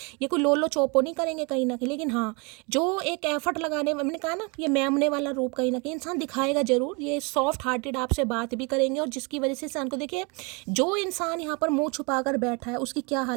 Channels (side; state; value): left; quieter; 31.1 dB